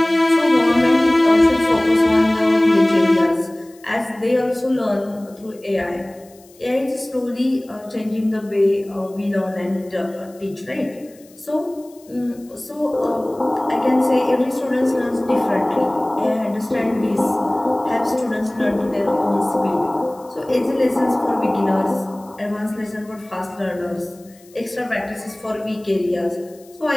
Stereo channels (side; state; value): left; noise; hiss, 27 dB below the sound